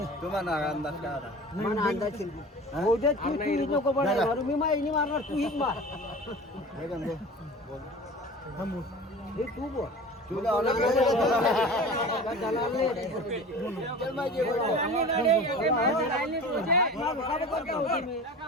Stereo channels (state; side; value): normal; both; correlation 0.37